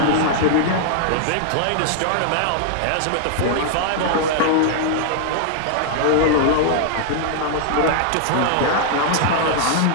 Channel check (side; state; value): both; different; correlation -0.01